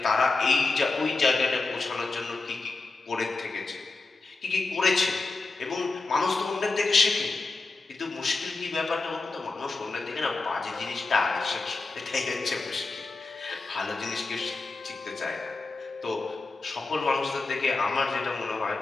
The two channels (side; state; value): right; quieter; 3.6 dB